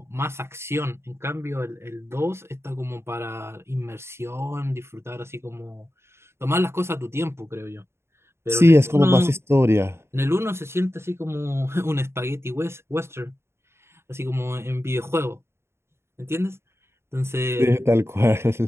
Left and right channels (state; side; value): late; left; 0.12 ms